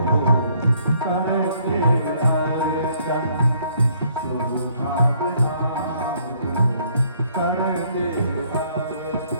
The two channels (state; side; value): inverted; both; correlation -0.65